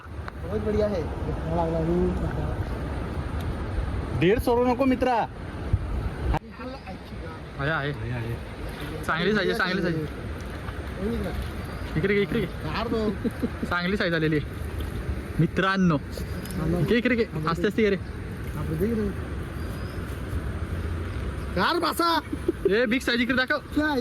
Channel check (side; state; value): both; identical; correlation 1.00